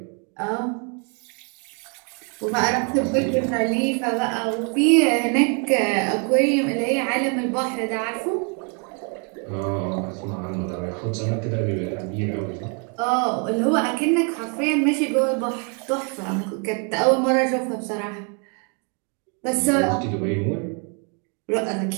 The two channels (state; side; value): quieter; left; 37.7 dB